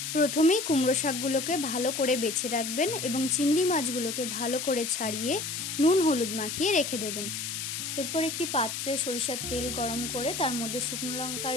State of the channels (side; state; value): left; noise; hiss, 4 dB below the sound